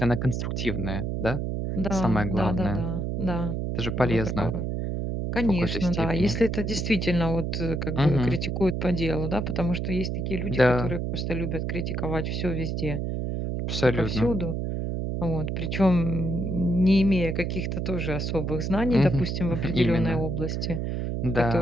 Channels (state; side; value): noise; right; hum, 2 dB below the sound